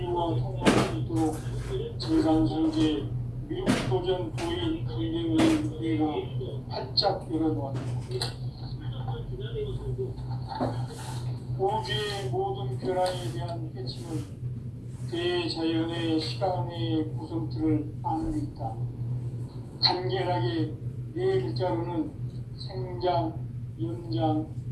통합할 수 있도록 증산상제 미륵도전 도인 강대우의 우리가 활짝 열어놓았다. 우주의 모든 변화에 대한 핵심은 대자연의 시간의 구성틀을 아는 데 있다. 간결하게 네 글자로는 생장, 연장,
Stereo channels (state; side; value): identical; both; correlation 1.00